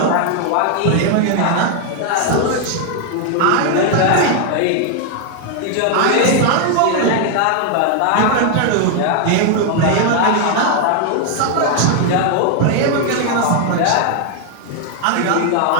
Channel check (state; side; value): different; both; correlation 0.00